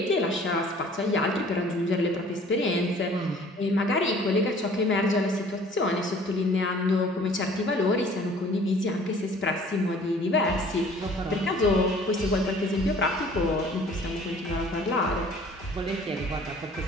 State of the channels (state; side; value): normal; both; correlation 0.52